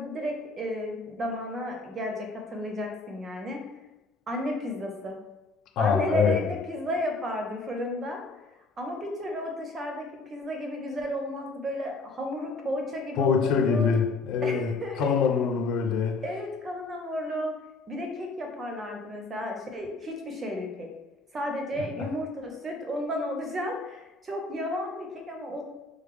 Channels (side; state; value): right; quieter; 3.3 dB